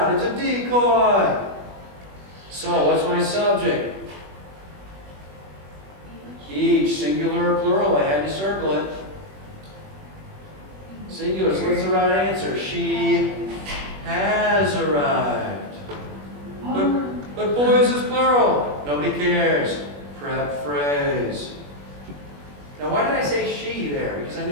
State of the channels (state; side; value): late; left; 21 ms